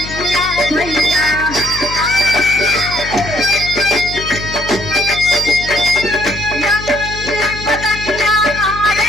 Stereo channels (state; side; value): noise; left; hum, 11 dB below the sound